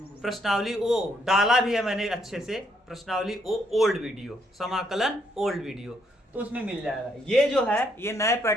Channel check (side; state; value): both; normal; correlation 0.73